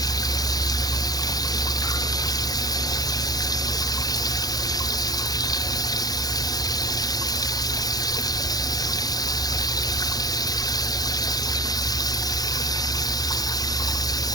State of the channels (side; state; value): right; late; 0.19 ms